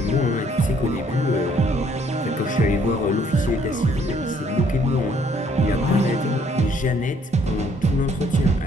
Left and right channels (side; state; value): both; normal; correlation 0.64